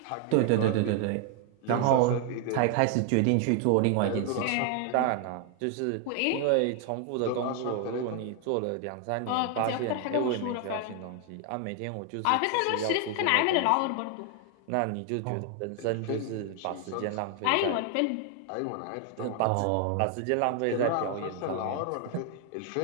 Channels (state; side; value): different; both; correlation 0.00